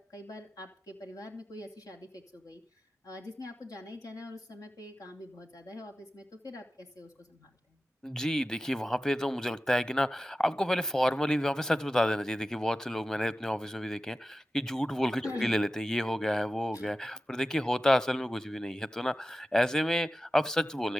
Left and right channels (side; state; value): both; normal; correlation 0.94